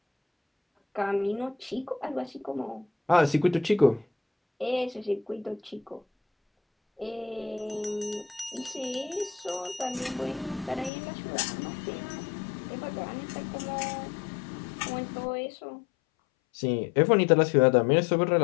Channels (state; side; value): drops out; right; at 10.9 s